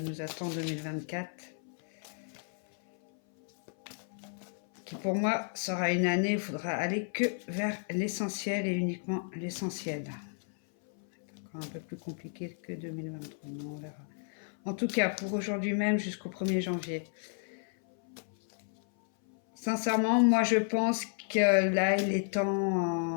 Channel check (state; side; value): silent; right; 56 dB below the other